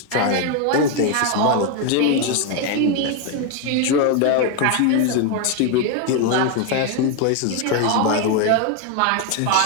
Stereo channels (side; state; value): both; different; correlation 0.01